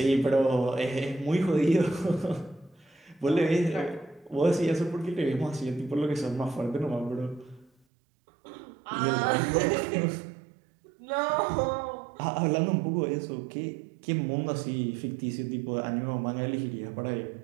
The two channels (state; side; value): drops out; left; at 7.7 s